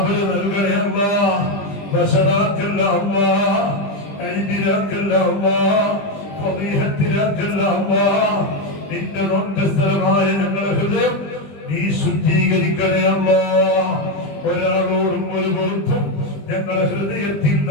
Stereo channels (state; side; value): late; right; 20 ms